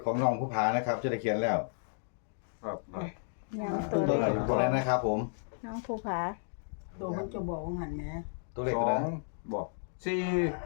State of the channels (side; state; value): right; silent; digital silence